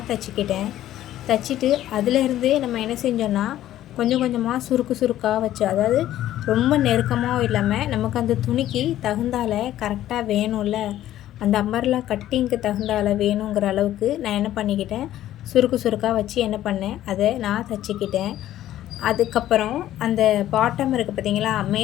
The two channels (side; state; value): right; quieter; 13.1 dB